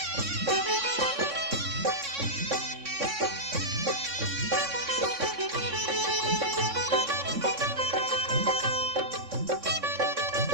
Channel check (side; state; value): left; late; 3.6 ms